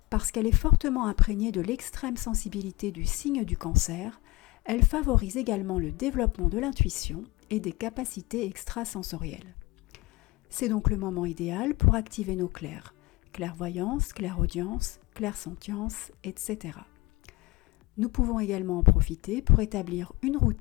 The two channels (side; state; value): right; quieter; 21.5 dB